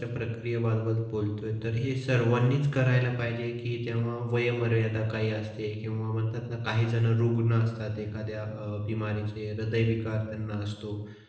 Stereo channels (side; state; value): both; identical; correlation 1.00